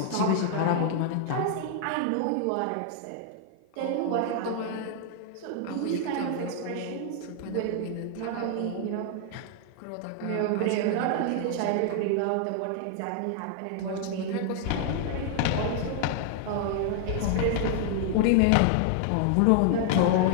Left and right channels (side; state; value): both; different; correlation 0.00